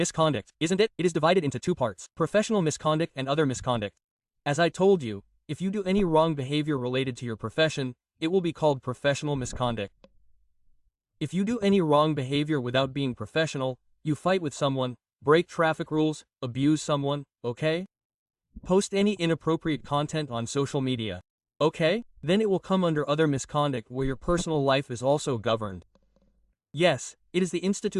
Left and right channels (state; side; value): identical; both; correlation 1.00